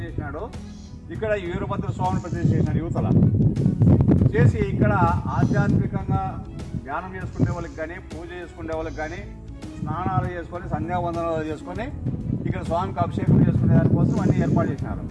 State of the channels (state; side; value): identical; both; correlation 1.00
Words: చేసినాడు, ఇక్కడ వీరభద్ర స్వామిని ప్రతిష్ఠ చేసినాడు యువతల చేసి. ఇక్కడ ఆధ్యాత్మికంగా ధ్యానం చేసుకునే వాళ్ళకి కానీ, పూజ చేసుకునే వాళ్ళకి కానీ, స్నానాలు చేసుకొని సంధ్యావందనాలు చేసుకొని ఇక్కడ స్వామికి అభిషేకం చేసుకునే దానికోసం అన్నీ ఏర్పాటు చేసినారు.